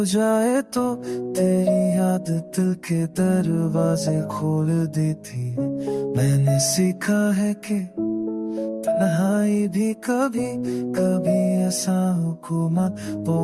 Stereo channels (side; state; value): both; identical; correlation 1.00